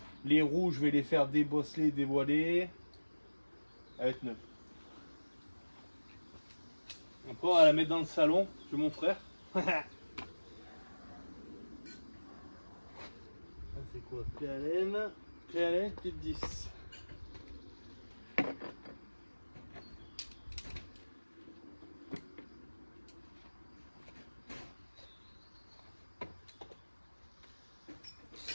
Les roues, je vais les faire débosseler, dévoiler. Elle va être neuve. Après, on va la mettre dans le salon chez mon frère. Ça, c'est quoi? Clé à laine, petite 10.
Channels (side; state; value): both; inverted; correlation -1.00